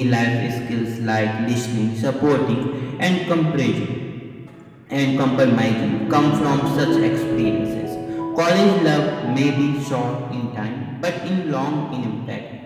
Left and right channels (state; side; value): identical; both; correlation 1.00